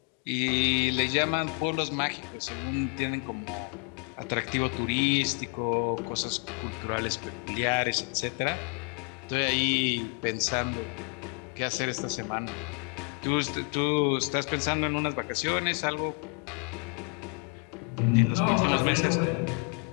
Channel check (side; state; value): right; quieter; 38.8 dB